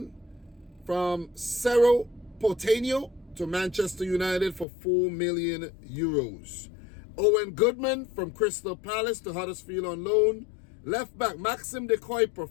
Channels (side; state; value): right; drops out; at 4.7 s